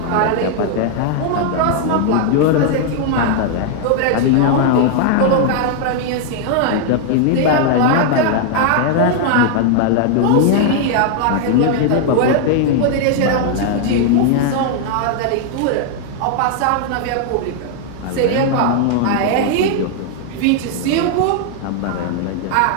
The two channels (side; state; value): both; different; correlation 0.00